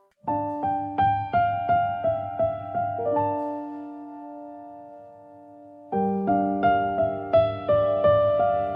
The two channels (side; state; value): both; identical; correlation 1.00